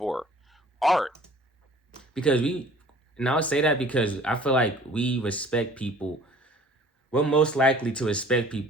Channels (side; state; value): both; normal; correlation 0.50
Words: Art. And I would say that because I feel like we respect people. We're most likely to respect